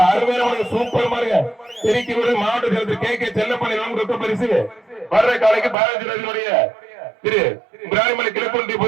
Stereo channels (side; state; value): left; drops out; at 5.8 s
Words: அருமையான சூப்பர் மாறுங்க. திருக்கி மாவட்ட செயலர் கே செல்லப்பன் ரொக்க பரிசு. வர்ற காலைக்கு பாரதிய திரு பிராணிமலை கிழக்குண்டி